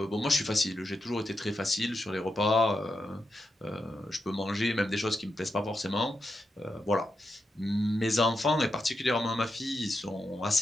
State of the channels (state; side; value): normal; both; correlation 0.87